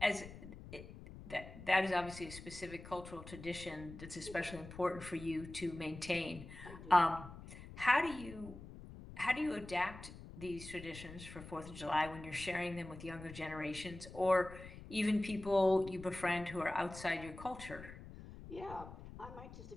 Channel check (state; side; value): noise; left; rumble, 14 dB below the sound